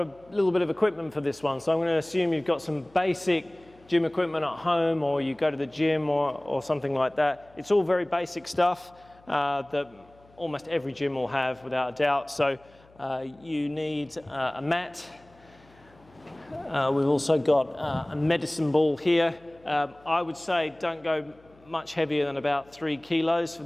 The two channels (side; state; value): left; noise; hum, 28 dB below the sound